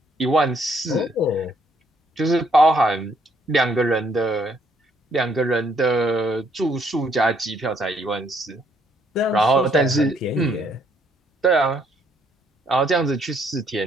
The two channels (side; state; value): both; normal; correlation 0.68